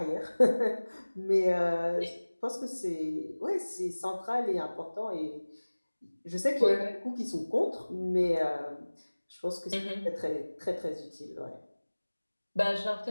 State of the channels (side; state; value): both; inverted; correlation -1.00